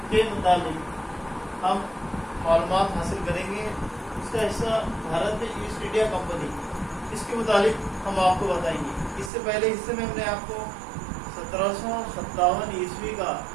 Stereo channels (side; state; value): left; drops out; at 9.3 s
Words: के मुताबिक हम मालूमात हासिल करेंगे। इसका हिस्सा भारत में ईस्ट इंडिया कंपनी, इसके मुताबिक हम आपको बताएंगे। इससे पहले हिस्से में हमने आपको 1757 ईस्वी का